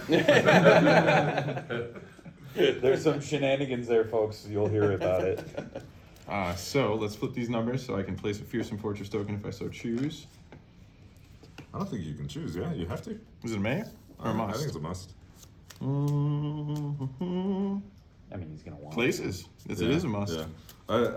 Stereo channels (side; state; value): both; identical; correlation 1.00